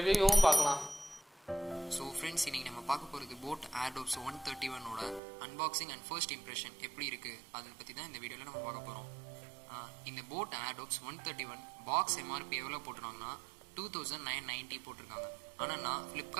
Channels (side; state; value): left; drops out; at 5.2 s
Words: பார்க்கலாம். So friends, இன்னைக்கு நம்ம பார்க்க போறது boAt Airdopes 131 ஓட unboxing and first impression எப்படி இருக்கு அத பத்தி தான் இந்த வீடியோல நம்ம பார்க்க போறோம். இந்த boAt Airdopes 131 பாக்ஸ் MRP எவ்வளவு போட்டுறாங்கன்னா 2990 போட்டுருக்காங்க. ஆனா நான்